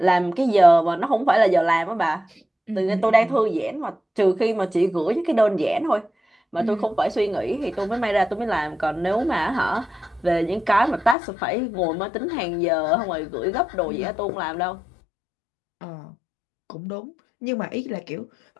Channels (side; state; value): right; drops out; at 11.2 s